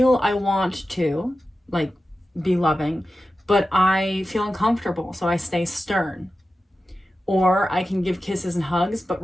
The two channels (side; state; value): both; normal; correlation 0.93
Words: I want to like be loving, but I feel uncomfortable, so I stay stern. Or I can give kisses and hugs, but